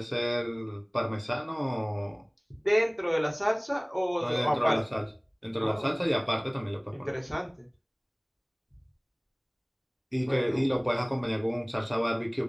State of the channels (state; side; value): identical; both; correlation 1.00